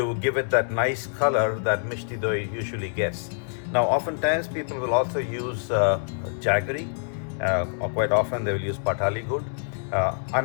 give it that nice color that Mishti Doi usually gets. Now oftentimes people will also use jaggery, or quite often they will use patali gur. I'm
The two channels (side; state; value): right; silent; 61 dB below the other